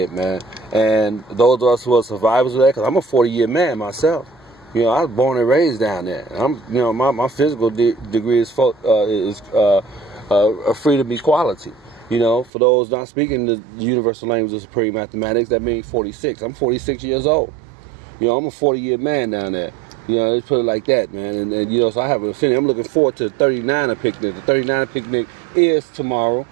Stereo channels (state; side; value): drops out; left; at 12.5 s